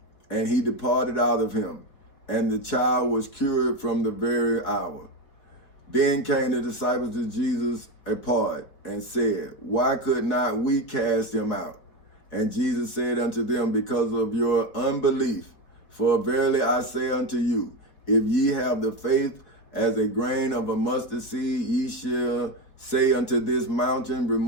and he departed out of him. And the child was cured from the very hour. Then came the disciples to Jesus apart, and said, Why could not we cast him out? And Jesus said unto them, Because of your unbelief. For verily I say unto you, if ye have the faith as a grain of a mustard seed, ye shall say unto this mountain,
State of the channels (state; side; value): late; right; 4.6 ms